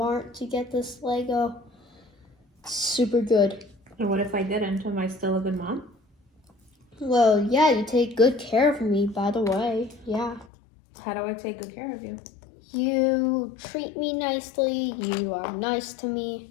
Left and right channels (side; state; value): right; drops out; at 10.5 s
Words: to get this Lego. It's super good. And what if I didn't? Am I still a good mom? Well, yeah, you take good care of me, by the way. Yeah. How do I take good care of you? You treat me nicely. You are nice to me.